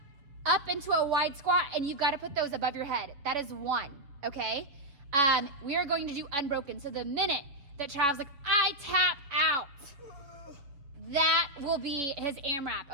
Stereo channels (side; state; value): left; late; 7.1 ms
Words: into a wide squat, and you've gotta put those above your head. That is one, okay? We are going to do unbroken. So the minute that Travis like, I tap out, that will be his AMRAP,